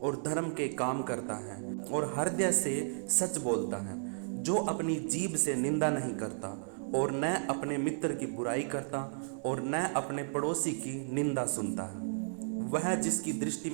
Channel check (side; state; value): left; silent; digital silence